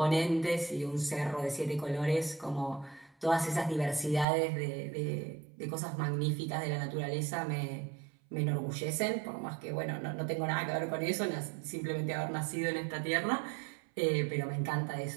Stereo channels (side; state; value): left; drops out; at 4.2 s